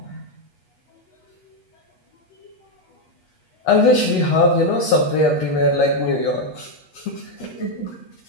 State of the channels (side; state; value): right; late; 8.4 ms